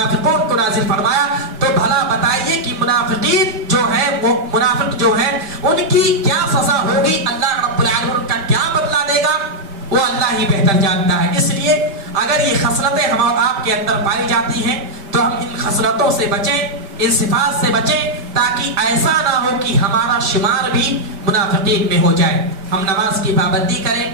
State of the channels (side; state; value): left; late; 5.1 ms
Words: کو نازل فرمایا۔ تو بھلا بتائیے کہ منافقین جو ہے، وہ منافق جو ہے ان کی کیا سزا ہوگی، اللہ رب العالمین ان کا کیا بدلہ دے گا، وہ اللہ ہی بہتر جانتا ہے۔ اس لیے اگر یہ خصلتیں ہم اور آپ کے اندر پائی جاتی ہیں تو ہم ان خصلتوں سے بچیں، ان صفات سے بچیں، تاکہ ایسا نہ ہو کہ ہمارا شمار بھی منافقین میں ہو جائے۔ ہم نماز کی پابندی کریں،